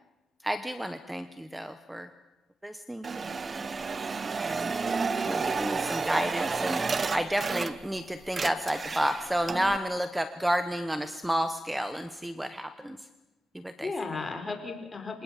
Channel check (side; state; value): both; normal; correlation 0.94